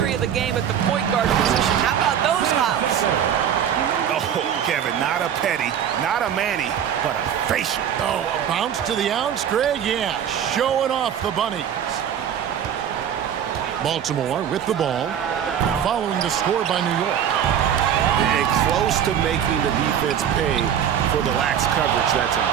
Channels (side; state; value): left; quieter; 9.1 dB